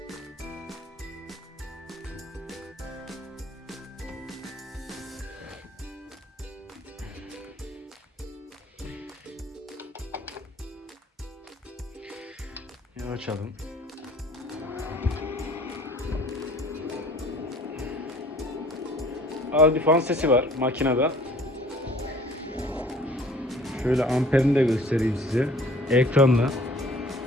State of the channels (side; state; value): both; normal; correlation 0.52